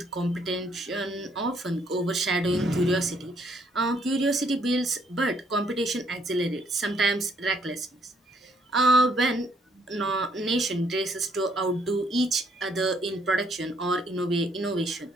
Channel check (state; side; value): normal; both; correlation 0.69